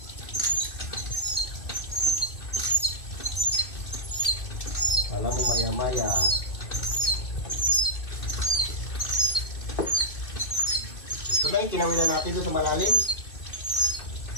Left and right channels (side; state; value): right; late; 2.6 ms